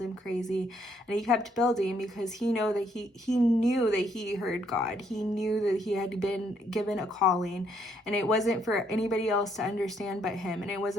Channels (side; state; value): both; normal; correlation 0.71